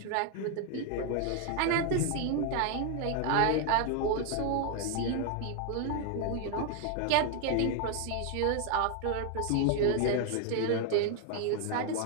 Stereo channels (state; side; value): different; both; correlation 0.00